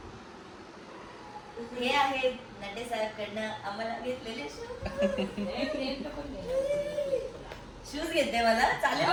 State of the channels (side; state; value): both; identical; correlation 1.00